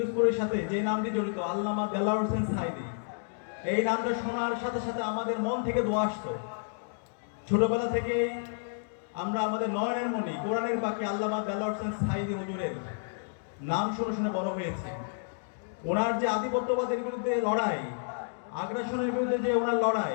সাথে যে নামটি জড়িত, আল্লামা দেলোয়ার হোসেন সাঈদী, এই নামটা শোনার সাথে সাথে আমাদের মন থেকে দোয়া আসতো। ছোটবেলা থেকেই আমরা আমাদের নয়নের মনি, কোরআনের বাকি আল্লামা দেলোয়ার হোসেন সাঈদী হুজুরের নাম শুনে শুনে বড় হয়েছে। ওনার যে আধিপত্যবাদের বিরুদ্ধে লড়াই, আগ্রাসনের বিরুদ্ধে যে ওনার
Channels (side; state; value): right; silent; digital silence